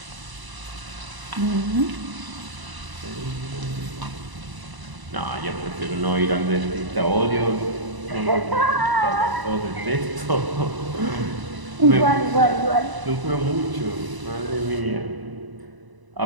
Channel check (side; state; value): left; late; 1.0 ms